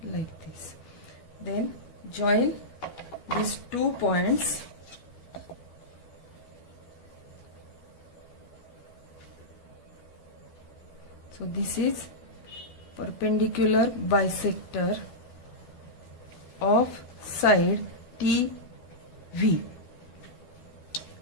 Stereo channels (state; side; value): late; right; 12 ms